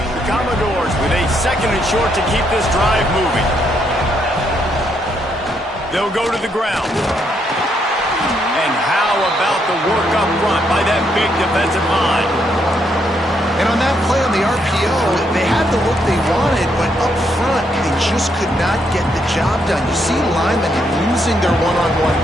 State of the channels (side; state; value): both; normal; correlation 0.75